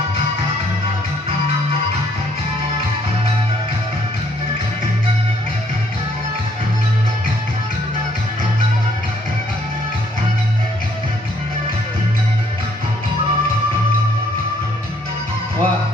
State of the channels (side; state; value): both; normal; correlation 0.66